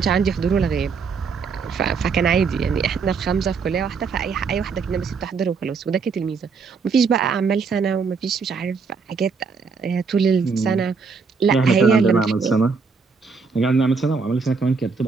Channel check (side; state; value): left; quieter; 5.2 dB